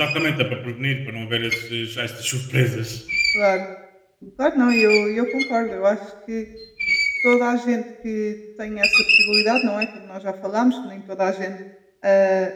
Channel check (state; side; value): identical; both; correlation 1.00